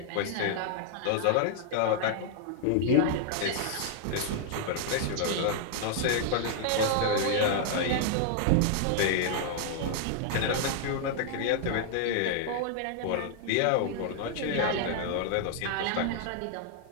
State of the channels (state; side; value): different; both; correlation 0.00